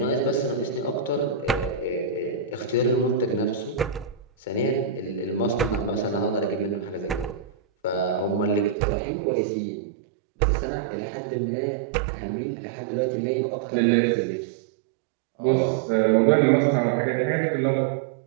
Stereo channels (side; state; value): left; drops out; at 8.8 s